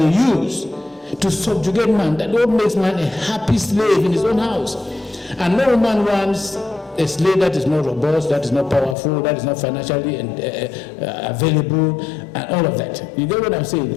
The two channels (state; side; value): drops out; right; at 9.0 s